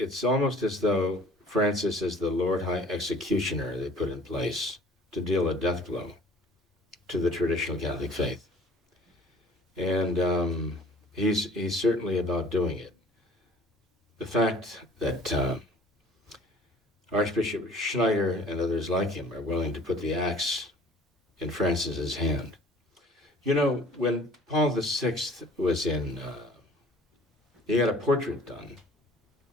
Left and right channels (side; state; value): both; normal; correlation 0.50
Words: almost as though Francis is the Lord High Executioner they put in place to deal a death blow to the traditional Catholic faith. And he's certainly about doing it. The fact that Archbishop Schneider and others like him are willing to put the axe in Francis's hand. When Paul VI was in, he had a portrait done.